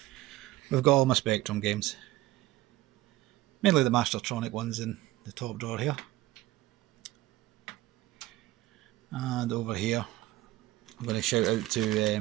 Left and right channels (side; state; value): left; quieter; 17.1 dB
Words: we've got all my Spectrum games, mainly the Mastertronic ones in the top drawer here. And over here I'm going to shout out to